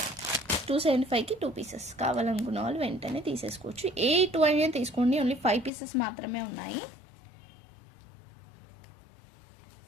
275కి 2 పీసెస్. కావాలనుకున్న వాళ్ళు వెంటనే తీసేసుకోవచ్చు. ఏ 2 అయినా తీసుకోండి. ఓన్లీ 5 పీసెస్ మాత్రమే ఉన్నాయి.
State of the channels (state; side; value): drops out; right; at 5.7 s